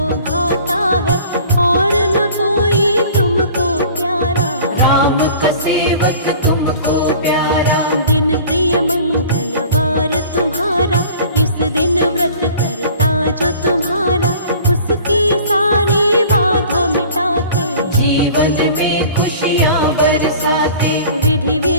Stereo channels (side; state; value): both; inverted; correlation -0.46